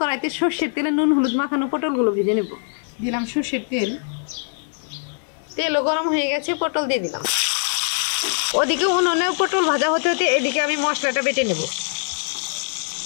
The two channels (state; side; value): silent; right; digital silence